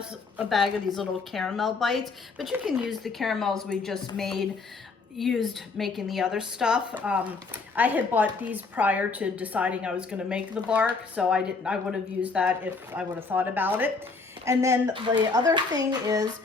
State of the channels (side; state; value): right; quieter; 4.3 dB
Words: a bag of these little caramel bites, but you can use the caramels we just used making the other stuff. I had bought these prior to deciding I was going to make the bark, so I would have used that if I would have thought about it. And then the other thing is